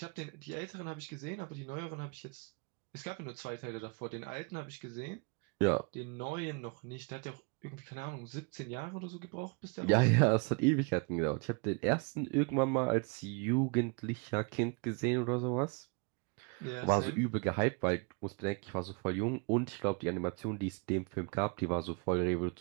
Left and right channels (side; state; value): left; quieter; 33.7 dB